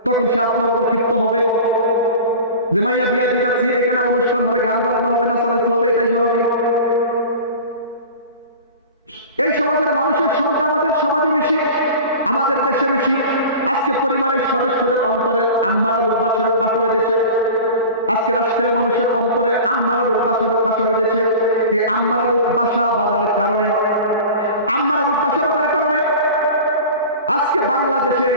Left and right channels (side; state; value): both; inverted; correlation -0.36